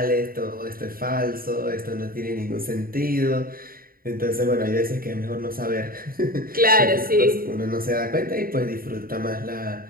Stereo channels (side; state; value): left; late; 0.42 ms